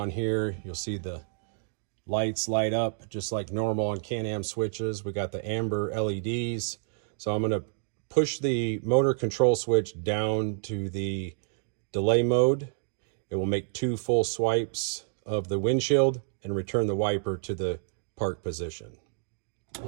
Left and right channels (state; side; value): silent; left; digital silence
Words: here. You'll see the lights light up just like normal on Can-Am switches. We got the amber LEDs. So I'm going to push the motor control switch down to the delay mode. It will make 2 full swipes of the windshield and return the wiper to the park position.